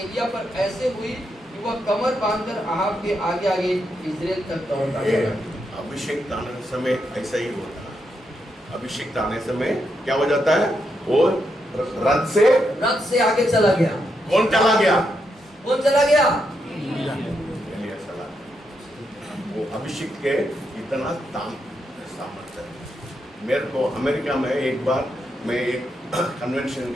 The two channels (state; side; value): normal; both; correlation 0.81